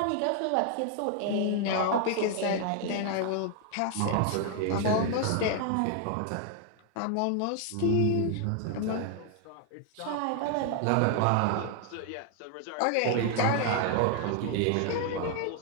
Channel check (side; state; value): both; different; correlation 0.00